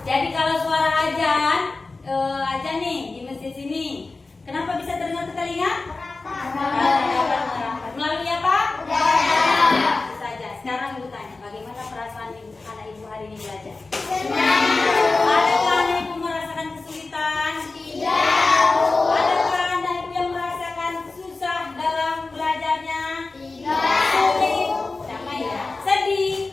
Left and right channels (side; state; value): right; quieter; 3.6 dB